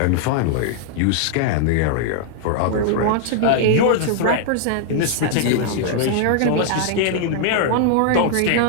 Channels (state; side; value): different; both; correlation 0.00